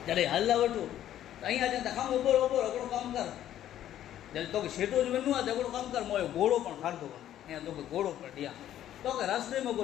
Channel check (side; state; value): right; quieter; 11.7 dB